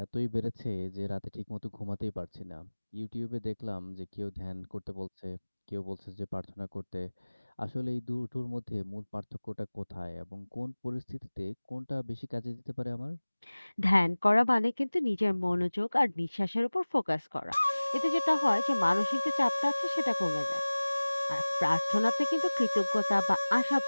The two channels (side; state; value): both; inverted; correlation -1.00